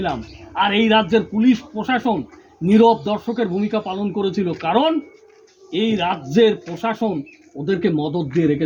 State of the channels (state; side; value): identical; both; correlation 1.00